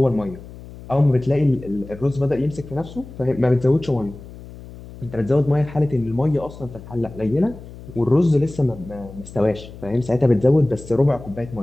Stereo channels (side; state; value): left; noise; hum, 16 dB below the sound